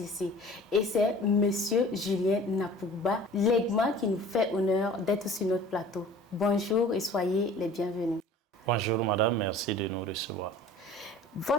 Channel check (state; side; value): normal; both; correlation 0.45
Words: Et c'est Monsieur Julien Napouba Legma qui nous fait honneur d'être sur notre plateau. Bonjour et soyez les bienvenus. Bonjour madame, merci de nous recevoir.